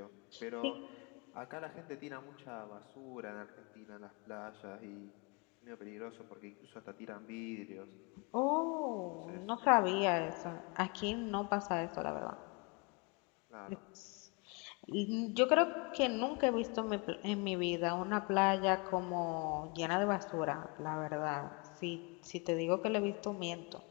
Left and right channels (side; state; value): right; quieter; 31.3 dB